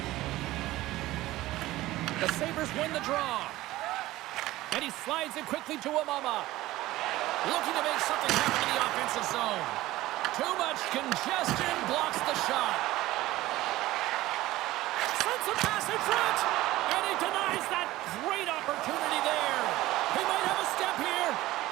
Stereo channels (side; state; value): left; quieter; 17.0 dB